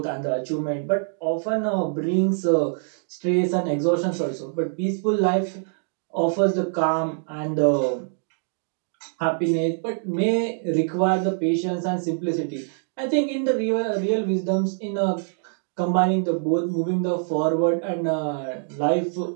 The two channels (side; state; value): left; silent; digital silence